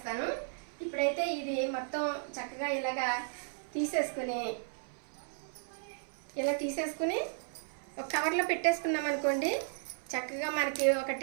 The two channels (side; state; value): left; silent; 55 dB below the other